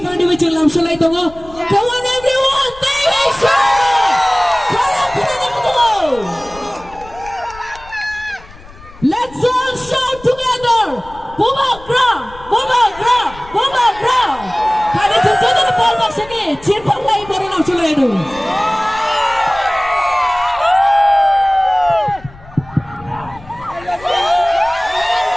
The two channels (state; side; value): noise; left; rumble, 20 dB below the sound